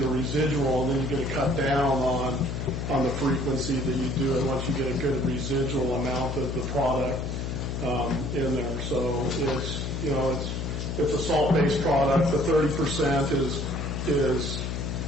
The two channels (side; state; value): left; noise; hum, 3 dB below the sound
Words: a residual, and then you get a cut down on the frequency that you do it once you get a good residual amount of the product in there. So it's a salt-based product. The 30% is